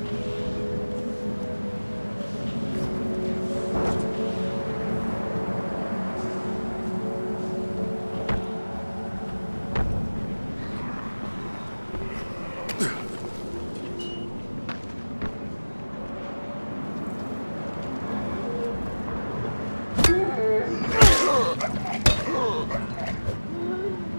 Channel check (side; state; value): both; inverted; correlation -1.00